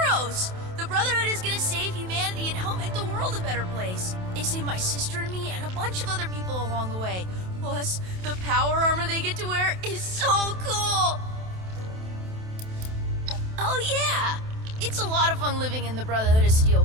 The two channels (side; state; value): left; late; 27 ms